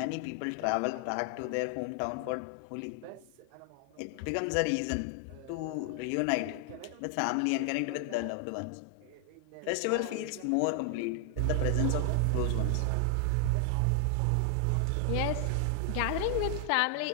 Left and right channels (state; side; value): different; both; correlation 0.00